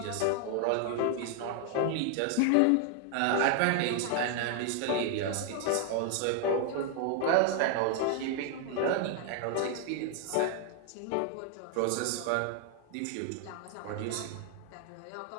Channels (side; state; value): both; different; correlation 0.00